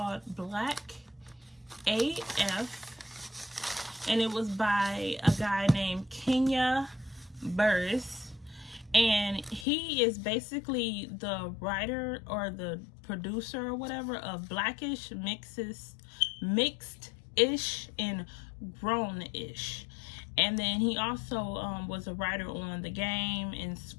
BlackAF, and it was by a guy named Kenya Burris, and he is basically the writer or the producer or whatever of Blackish, Mixed-ish, and Grown-ish. And then he also was a writer on The Game, and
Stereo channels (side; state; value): right; drops out; at 9.7 s